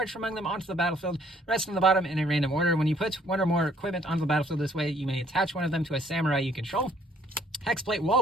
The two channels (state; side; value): normal; both; correlation 0.62